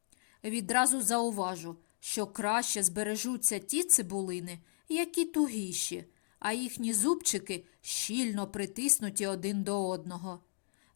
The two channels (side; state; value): right; silent; digital silence